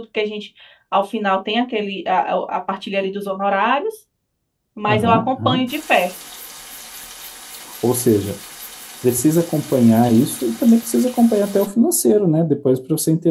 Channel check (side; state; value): both; identical; correlation 1.00